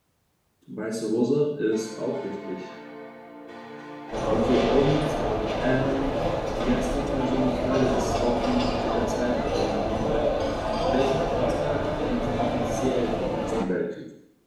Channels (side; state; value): both; identical; correlation 1.00